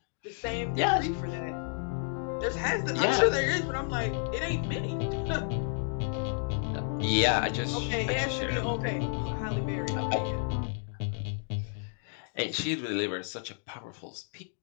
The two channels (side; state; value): right; silent; 57 dB below the other